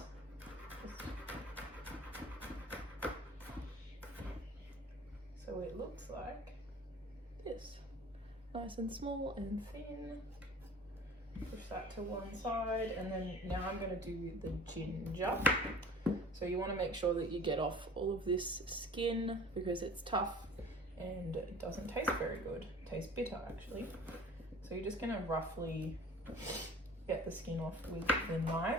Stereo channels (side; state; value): both; normal; correlation 0.44